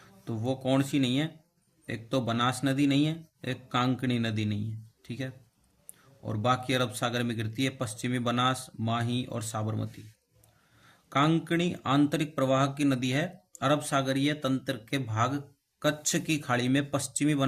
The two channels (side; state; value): both; identical; correlation 1.00